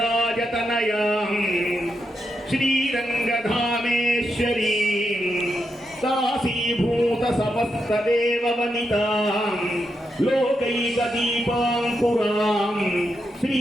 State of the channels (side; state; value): both; normal; correlation 0.84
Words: శ్రీరంగధామేశ్వరీ దాసీభూత సమస్త దేవ వనితాం లోకైక దీపాంకురాం